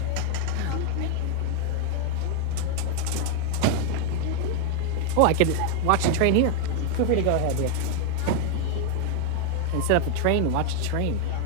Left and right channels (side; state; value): both; different; correlation 0.00